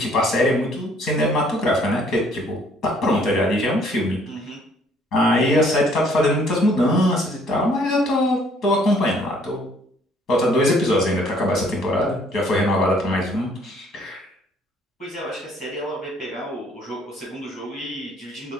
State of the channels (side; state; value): both; normal; correlation 0.61